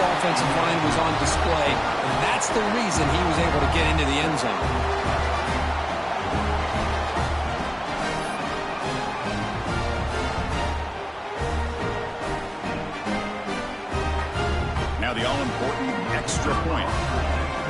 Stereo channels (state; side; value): identical; both; correlation 1.00